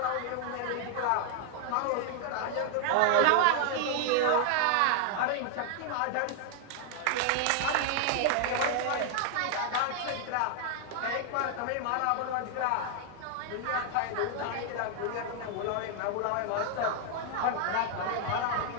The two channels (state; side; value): different; both; correlation 0.00